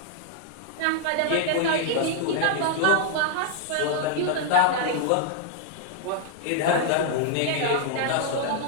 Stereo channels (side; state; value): both; different; correlation 0.00